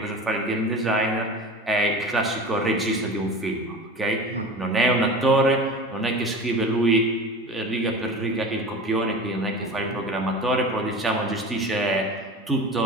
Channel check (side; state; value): both; normal; correlation 0.34